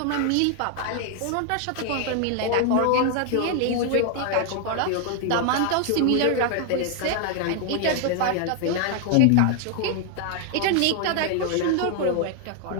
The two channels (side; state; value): both; different; correlation 0.00